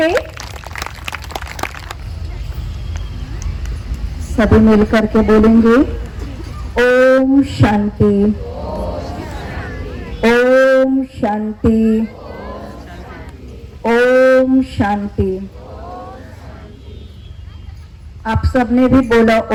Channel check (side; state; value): both; identical; correlation 1.00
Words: सभी मिलकर के बोलेंगे ओम शांति, ओम शांति, ओम शांति। आप सबने भी बोला